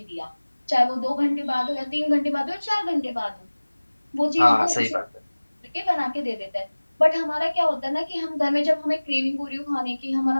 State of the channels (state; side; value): inverted; both; correlation -1.00